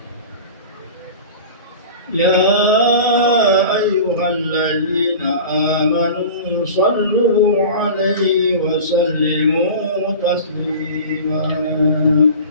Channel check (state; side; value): inverted; both; correlation -0.36